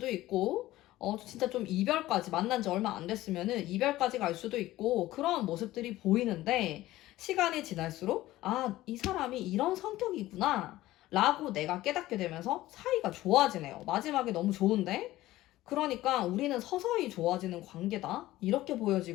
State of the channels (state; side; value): quieter; right; 16.2 dB